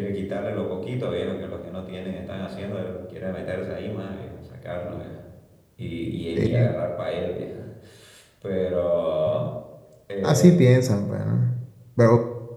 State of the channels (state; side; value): identical; both; correlation 1.00